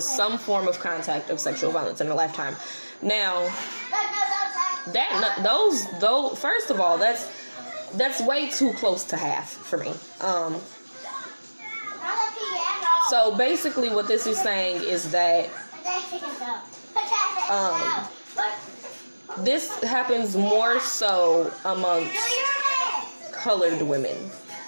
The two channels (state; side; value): inverted; both; correlation -1.00